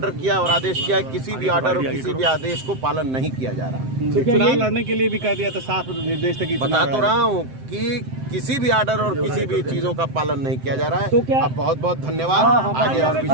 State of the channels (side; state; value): left; late; 7.8 ms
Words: किया और आदेश किया है, किसी भी ऑर्डर और किसी भी आदेश को पालन नहीं किया जा रहा। चुनाव लड़ने के लिए भी कह दिया था, साफ निर्देश था कि बता तो रहा हूँ कि किसी भी ऑर्डर और किसी भी चीजों का पालन नहीं किया जा रहा तो है। क्या- अब बहुत बहुत धन्यवाद। आगे और भी